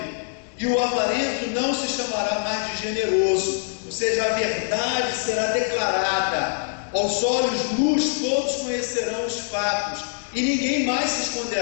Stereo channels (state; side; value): silent; right; digital silence